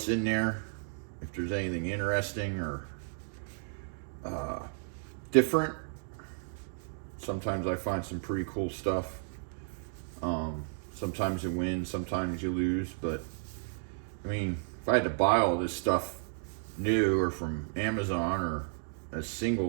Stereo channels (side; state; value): left; silent; digital silence